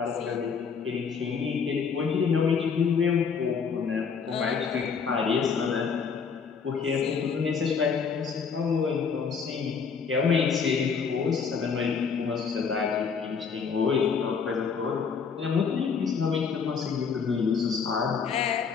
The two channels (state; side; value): quieter; right; 5.9 dB